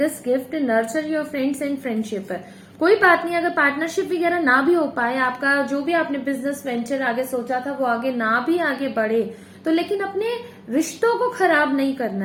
gift, nurture your friends and friendship. कोई बात नहीं, अगर पार्टनरशिप वगैरह ना भी हो पाए, आपका जो भी आपने बिजनेस वेंचर आगे सोचा था वो आगे ना भी आगे बढ़े, तो लेकिन अपने रिश्तों को खराब नहीं करना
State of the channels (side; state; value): both; identical; correlation 1.00